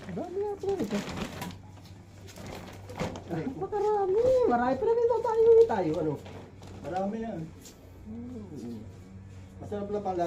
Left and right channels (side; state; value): both; identical; correlation 1.00